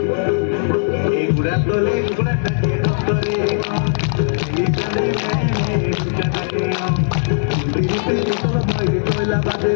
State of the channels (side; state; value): right; silent; digital silence